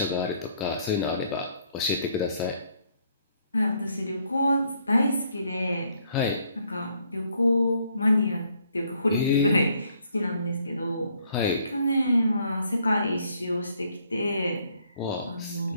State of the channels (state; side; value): inverted; both; correlation -0.68